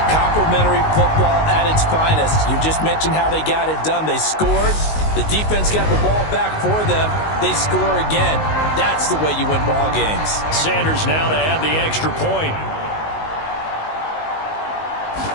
Complimentary football at its finest. You just mentioned how they got it done. They scored. The defense got the ball back for them. They score again. That's the way you win ball games. Sanders now to add the extra point.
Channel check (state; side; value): late; right; 19 ms